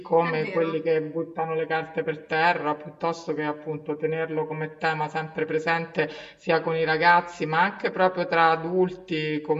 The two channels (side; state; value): both; identical; correlation 1.00